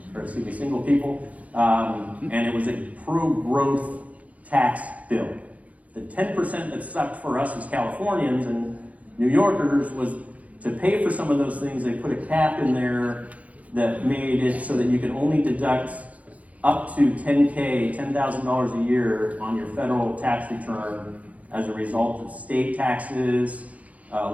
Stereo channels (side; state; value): left; late; 0.068 ms